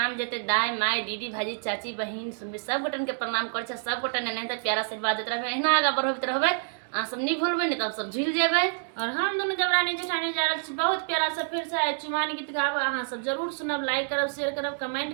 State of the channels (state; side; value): silent; left; digital silence